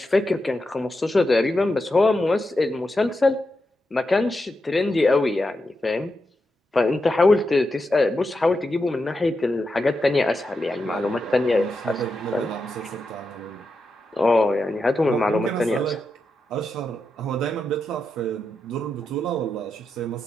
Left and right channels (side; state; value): both; normal; correlation 0.87